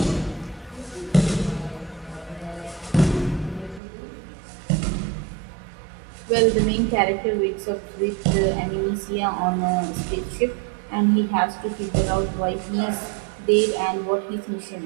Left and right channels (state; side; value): drops out; left; at 3.8 s